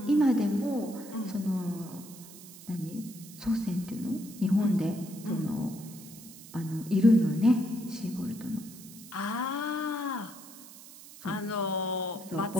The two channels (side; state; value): right; noise; hiss, 17 dB below the sound